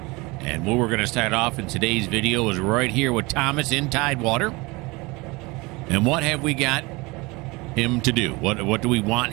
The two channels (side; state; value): left; quieter; 24.3 dB